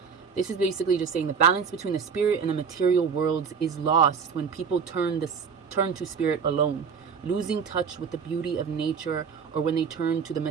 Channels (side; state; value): left; quieter; 6.2 dB